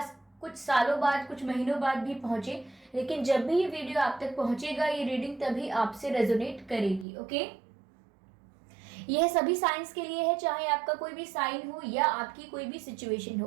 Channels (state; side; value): drops out; left; at 7.1 s